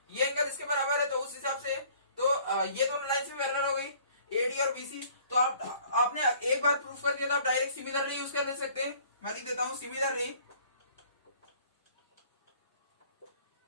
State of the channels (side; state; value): both; inverted; correlation -0.55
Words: ये एंगल इसके बराबर है, तो उस हिसाब से तो ये दोनों लाइंस भी पैरेलल हो गई AD और BC। तो आपने एक बार प्रूफ कर दिया तो आप डायरेक्ट सिमिलरली यूज कर ले सकते हैं। मैं लिख देता हूं similarly